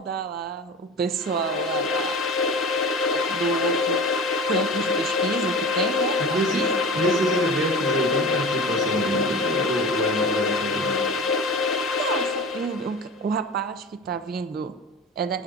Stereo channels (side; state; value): both; normal; correlation 0.34